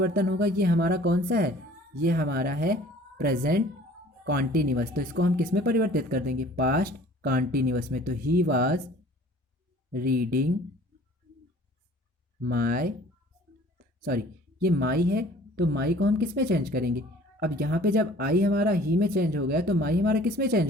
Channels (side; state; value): both; normal; correlation 0.50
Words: होगा, ये हमारा कौन सा है, ये हमारा है प्रेजेंट कॉन्टिन्यूअस। तो इसको हम किस में परिवर्तित कर देंगे, पास्ट कॉन्टिन्यूअस में। तो ही वाज रीडिंग माई, सॉरी ये माई है, तो माई को हम किस में चेंज करेंगे। अब यहाँ पे जब आई हमारा ही में चेंज हो गया तो माई हमारा किस में